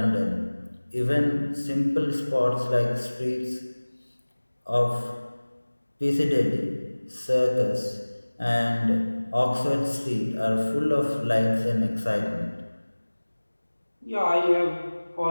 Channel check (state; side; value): inverted; both; correlation -1.00